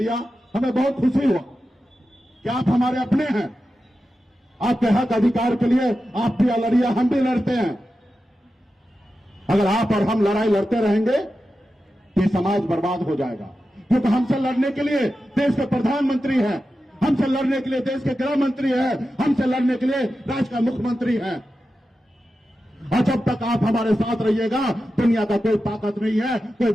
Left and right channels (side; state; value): both; normal; correlation 0.92